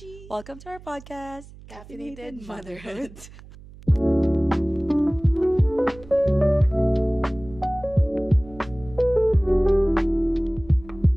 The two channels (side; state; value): right; noise; hum, 19 dB below the sound